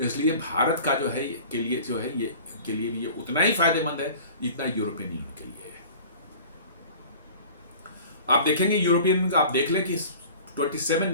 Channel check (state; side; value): inverted; both; correlation -0.43